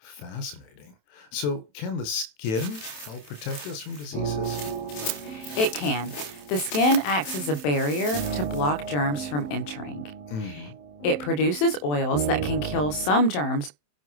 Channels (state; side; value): late; right; 27 ms